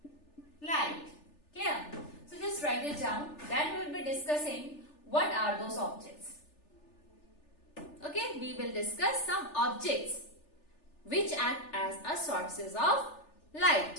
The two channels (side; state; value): right; late; 3.4 ms